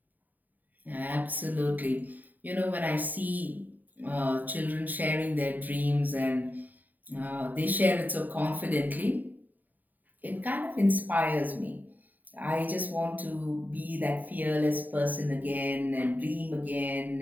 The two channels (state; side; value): late; left; 0.084 ms